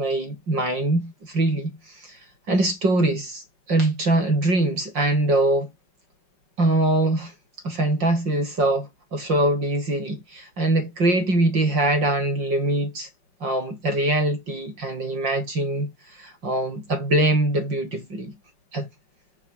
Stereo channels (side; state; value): left; late; 5.6 ms